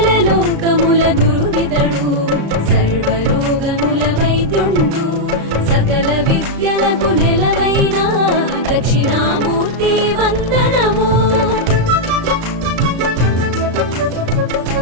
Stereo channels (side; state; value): left; late; 35 ms